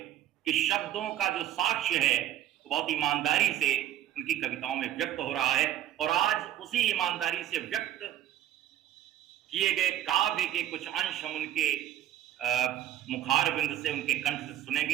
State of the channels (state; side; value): quieter; left; 12.2 dB